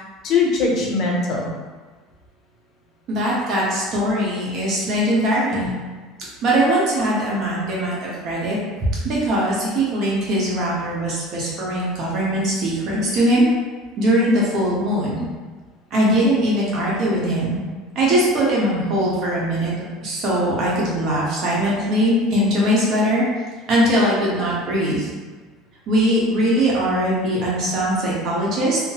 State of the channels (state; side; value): normal; both; correlation 0.40